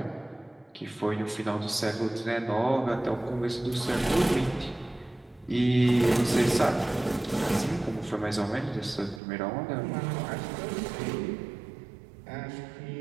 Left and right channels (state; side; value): drops out; left; at 9.2 s